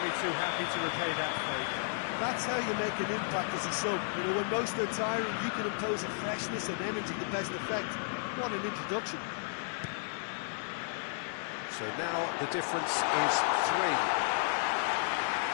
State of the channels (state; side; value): silent; right; digital silence